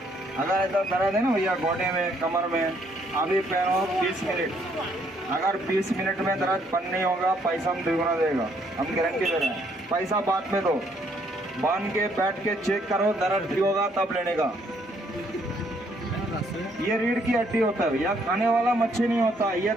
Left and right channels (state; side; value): normal; both; correlation 0.69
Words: अगर ऐसा दर्द है ना भैया गोडे में, कमर में, अभी पहनो 20 मिनट। अगर 20 मिनट में दर्द बंद नहीं होगा, पैसा हम दुगना देगा, हम गारंटी दे रहे हैं। पैसा बाद में दो, बांध के बैठ के चेक करो, दर्द ठीक होगा तब लेने का। ये रीढ़ की हड्डी होता है भैया, खाने वाला मच्छी नहीं होता, ये